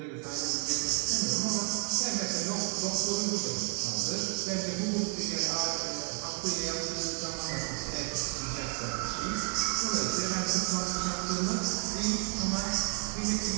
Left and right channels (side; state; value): left; quieter; 34.5 dB